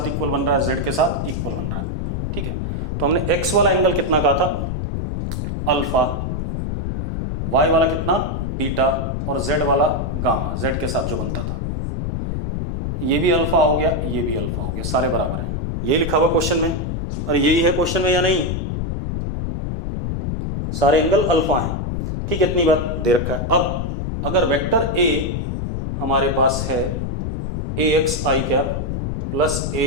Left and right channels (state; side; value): noise; left; rumble, 2 dB below the sound